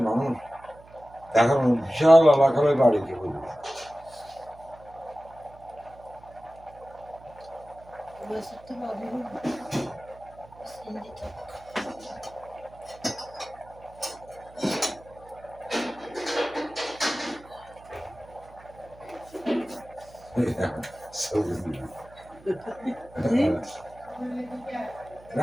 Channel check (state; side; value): noise; right; hum, 23 dB below the sound